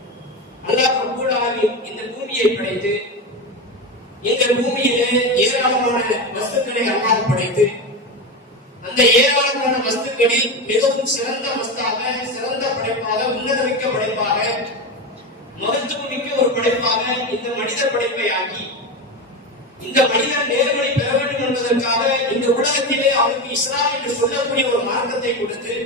அல்லாஹ் ரப்பல் ஆலமீன் இந்த பூமியை படைத்து இந்த பூமியிலே ஏராளமான வஸ்துக்களை அல்லாஹ் படைத்து அந்த ஏராளமான வஸ்துக்களில் மிகவும் சிறந்த வஸ்தாக, சிறந்த படைப்பாக, உன்னதமிக்க படைப்பாக, மகத்துவமிக்க ஒரு படைப்பாக இந்த மனித படைப்பை ஆக்கி இந்த மனிதன் நேர்வழி பெற வேண்டும் என்பதற்காக இந்த உலகத்திலே அவனுக்கு இஸ்லாம் என்று சொல்லக்கூடிய ஒரு மார்க்கத்தை கொடுத்து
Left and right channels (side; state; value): both; normal; correlation 0.19